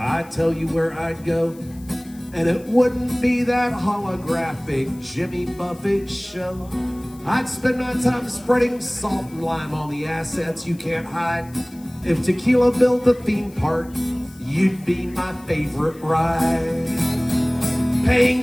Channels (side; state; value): left; noise; hiss, 25 dB below the sound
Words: tell you where I'd go. And it wouldn't be that holographic Jimmy Buffett show. I'd spend my time spreading salt and lime on the assets you can't hide. If tequila built a theme park, you'd be my favorite ride.